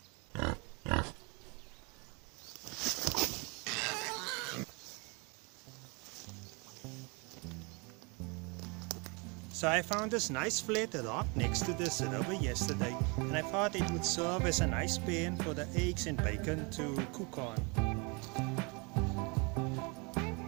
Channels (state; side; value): quieter; left; 30.4 dB